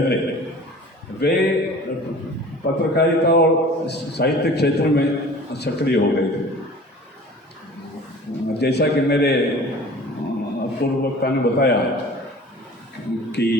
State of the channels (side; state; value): both; normal; correlation 0.44